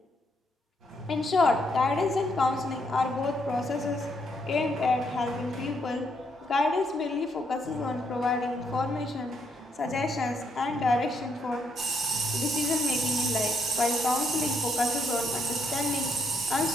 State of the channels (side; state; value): both; normal; correlation 0.75